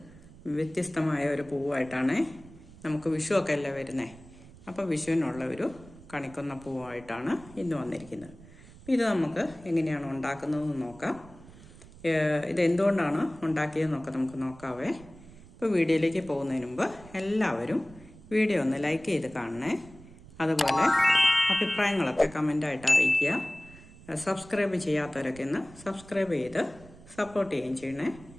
വ്യത്യസ്തമായ ഒരു പൂവായിട്ടാണ്. നമുക്ക് വിഷുവൊക്കെ അല്ലേ വരുന്നത്, അപ്പോൾ വിഷുവിനുള്ള ഒരു കണിക്കൊന്ന പൂവായിട്ടാണ് ഇന്ന് വന്നിരിക്കുന്നത്. ഇത് നമുക്ക് എങ്ങനെയാണ് ഉണ്ടാക്കുന്നതെന്ന് നോക്കാം. ഇത് എന്തുകൊണ്ടാണ് ഉണ്ടാക്കിയതെന്നൊക്കെ നമുക്ക് നോക്കാവേ. ഇപ്പോൾ വീഡിയോയിലേക്ക് പോകുന്നതിന് മുമ്പ് എല്ലാവരും വീഡിയോ ഒന്ന് ലൈക്ക് ചെയ്ത് കാണണേ. അതുപോലെ അഭിപ്രായങ്ങളൊക്കെ കമൻ്റായിട്ട് അറിയിക്കുക. സബ്സ്ക്രൈബ് ചെയ്യാത്തവരൊക്കെ ഒന്ന് സബ്സ്ക്രൈബ് ചെയ്ത് സപ്പോർട്ട് ചെയ്യുകയും ചെയ്യണേ.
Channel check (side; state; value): right; noise; rumble, 20 dB below the sound